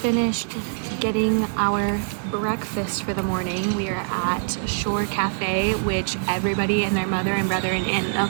getting our breakfast for the morning. We are at Shore Cafe, which everybody and their mother and brother and aunt and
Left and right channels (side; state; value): left; silent; digital silence